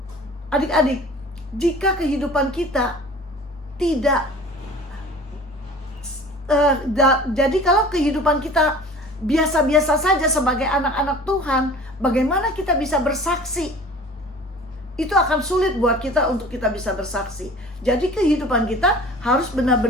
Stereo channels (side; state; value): both; normal; correlation 0.44